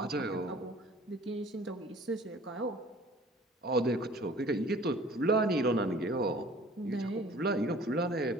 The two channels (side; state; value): both; normal; correlation 0.49